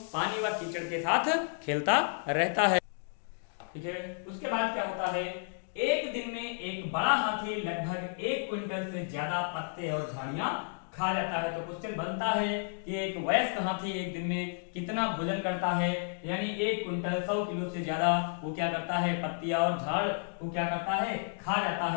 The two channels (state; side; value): silent; right; digital silence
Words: पानी व कीचड़ के साथ खेलता रहता है। ठीक है, उसके बाद क्या होता है, एक दिन में एक बड़ा हाथी लगभग 1 क्विंटल से ज्यादा पत्ते और झाड़ियां खा जाता है। तो क्वेश्चन बनता है कि एक वयस्क हाथी एक दिन में कितना भोजन करता है, यानी 1 क्विंटल 100 किलो से ज्यादा वो क्या करता है, पत्तियां और झाड़ वो क्या करता है, खा जाता